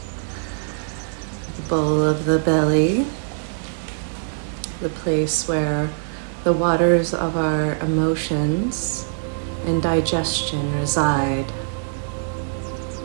the bowl of the belly, the place where the waters of our emotions and digestion reside.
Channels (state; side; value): silent; left; 64 dB below the other